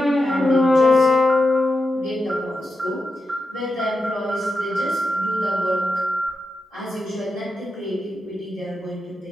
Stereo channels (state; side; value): normal; both; correlation 0.88